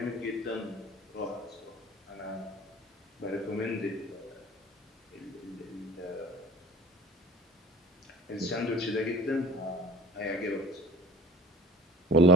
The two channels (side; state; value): both; normal; correlation 0.44